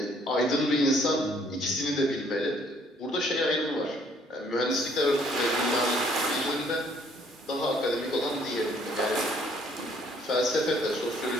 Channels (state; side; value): normal; both; correlation 0.63